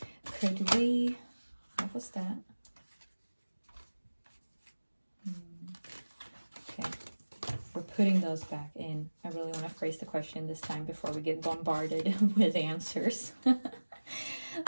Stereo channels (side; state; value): both; inverted; correlation -1.00